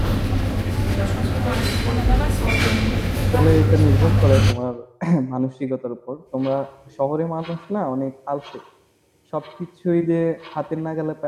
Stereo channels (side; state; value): both; identical; correlation 1.00